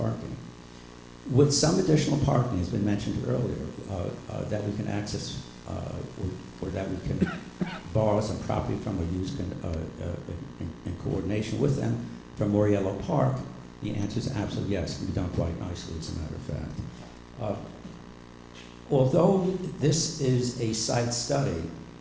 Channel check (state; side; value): identical; both; correlation 1.00